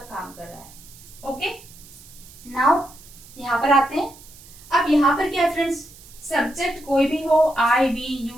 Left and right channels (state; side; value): noise; right; hiss, 21 dB below the sound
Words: कर रहा है, ओके। नाउ यहाँ पर आते हैं। अब यहाँ पर क्या है फ्रेंड्स, सब्जेक्ट कोई भी हो, I we